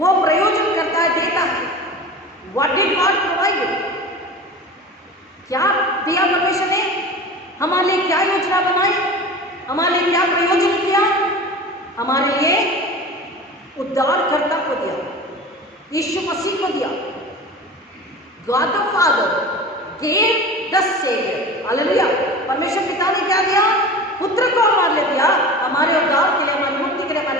प्रयोजन करता है, देता है। What did God provide? क्या दिया परमेश्वर ने? हमारे लिए क्या योजना बनाई? हमारे लिए क्या प्रयोजन किया? हमारे लिए उद्धारकर्ता को दिया, यीशु मसीह को दिया। God the Father gave the Savior, hallelujah. परमेश्वर पिता ने क्या दिया? पुत्र को हमारे लिए दिया, हमारे उद्धार के लिए, हमारी मुक्ति के लिए,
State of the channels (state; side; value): normal; both; correlation 0.34